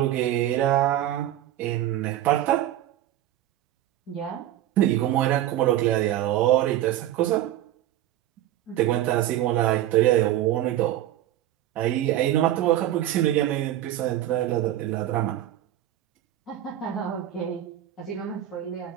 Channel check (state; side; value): quieter; left; 13.0 dB